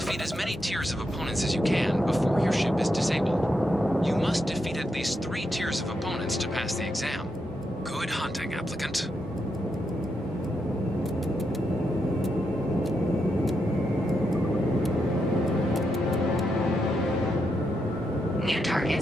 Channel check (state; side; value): normal; both; correlation 0.83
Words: as many tiers of opponents as you can before your ship is disabled. You must defeat at least 3 tiers of opponents to pass the exam. Good hunting, applicant. New